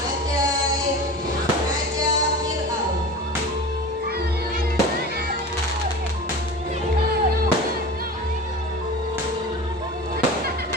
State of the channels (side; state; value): both; normal; correlation 0.34